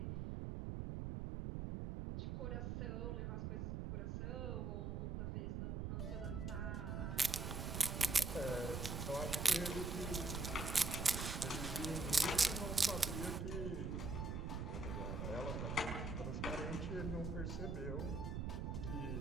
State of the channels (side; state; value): right; noise; rumble, 2 dB below the sound